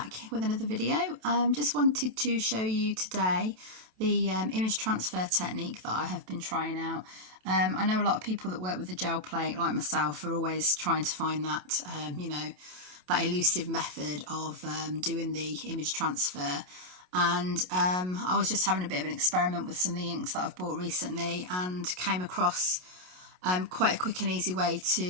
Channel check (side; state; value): left; late; 27 ms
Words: with another video. Just wanted to show you today the image transfer technique that I have been trying out. I know a lot of people that work with the gel plate like myself are always trying to find that, that elusive method of doing the image transfer. And I was just having a bit of an experiment with some of the inks that I've bought recently and came across quite a quick and easy way